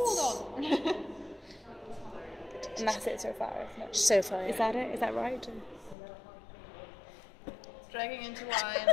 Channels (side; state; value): right; drops out; at 6.0 s